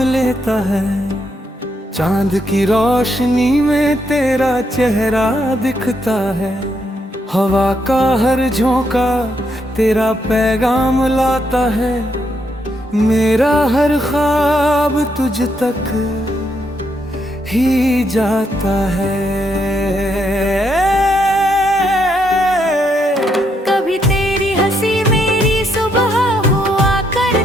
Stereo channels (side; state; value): both; normal; correlation 0.77